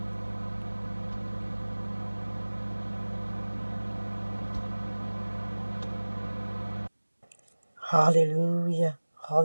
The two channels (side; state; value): both; inverted; correlation -1.00